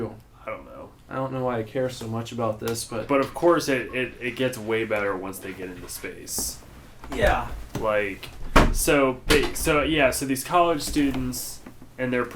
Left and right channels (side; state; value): both; identical; correlation 1.00